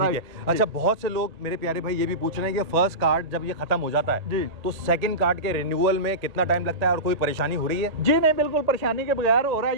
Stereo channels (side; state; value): left; late; 1.8 ms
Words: ठीक है। अच्छा, बहुत से लोग मेरे प्यारे भाई ये भी पूछ रहे हैं कि फर्स्ट कार्ड जब ये खत्म हो जाता है जी, तो सेकंड कार्ड के रिन्यूअल में कितना टाइम लगता है और कोई परेशानी हो रही है? जी नहीं, बिल्कुल परेशानी के बगैर हो रहा